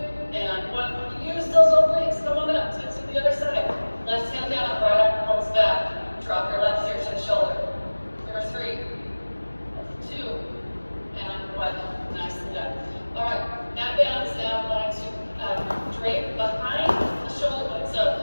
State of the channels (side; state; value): both; inverted; correlation -1.00